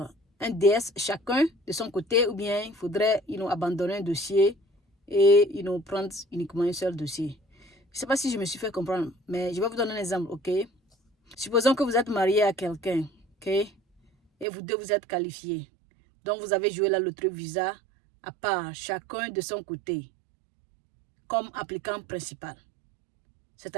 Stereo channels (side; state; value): left; drops out; at 14.5 s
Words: un DS chacun de son côté, ou bien il faudrait abandonner un dossier et prendre uniquement un seul dossier? Je ne sais pas si je me suis fait comprendre, mais je vais vous donner un exemple, ok? Supposons que vous êtes marié à quelqu'un, ok? Et vous deux, vous êtes qualifiés. Donc, vous avez joué la loterie Visa à part, chacun de son côté, comme applicant principal.